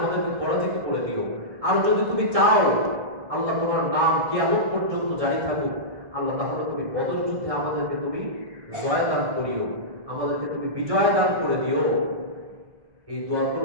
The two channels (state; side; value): late; left; 1.7 ms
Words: পরাজিত করে দিও। আর যদি তুমি চাও আল্লাহ তোমার নাম কিয়ামত পর্যন্ত জারি থাকুক, আল্লাহ, তাহলে তুমি বদর যুদ্ধে আমাদেরকে তুমি জয় দান করিও, আমাদেরকে তুমি বিজয় দান করে দিও। এই দোয়া